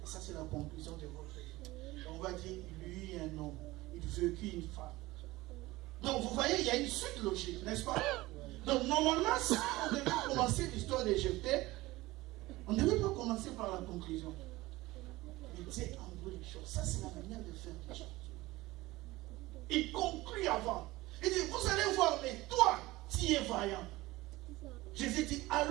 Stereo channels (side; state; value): left; quieter; 19.3 dB